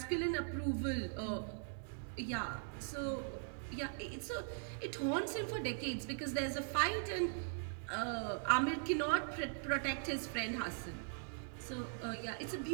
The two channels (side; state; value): left; silent; digital silence